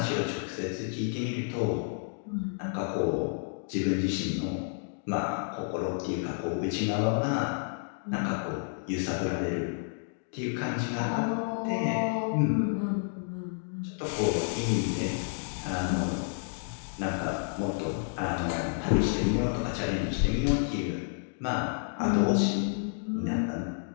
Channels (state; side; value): silent; right; digital silence